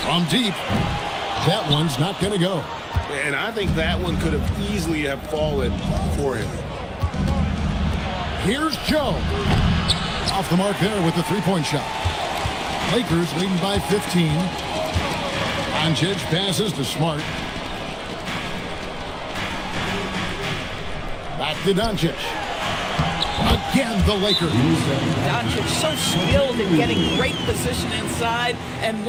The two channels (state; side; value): identical; both; correlation 1.00